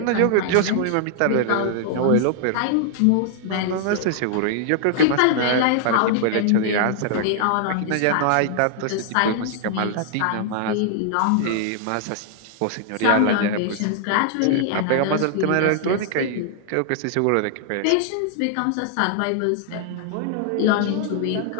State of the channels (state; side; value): different; both; correlation -0.01